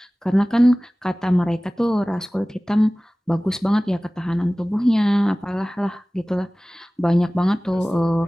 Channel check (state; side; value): normal; both; correlation 0.98